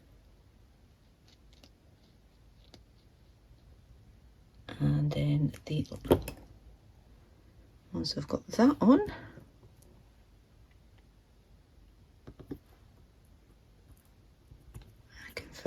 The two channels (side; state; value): both; identical; correlation 1.00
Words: And then once I've got that on, I can